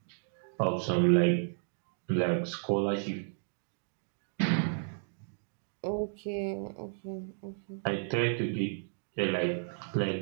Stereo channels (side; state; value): left; silent; digital silence